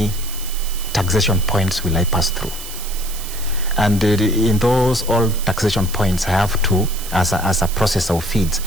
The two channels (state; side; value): noise; right; hiss, 11 dB below the sound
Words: taxation points will I pass through? And in those all taxation points, I have to, as a processor of feeds,